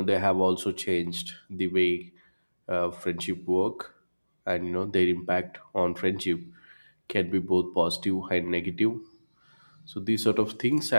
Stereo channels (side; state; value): both; inverted; correlation -1.00